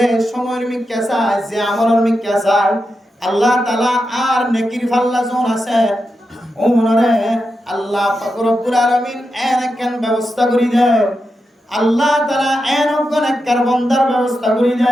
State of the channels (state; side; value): normal; both; correlation 0.88